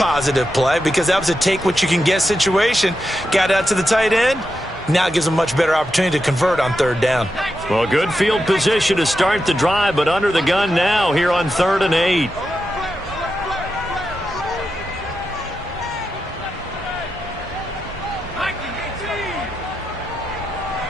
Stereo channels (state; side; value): normal; both; correlation 0.88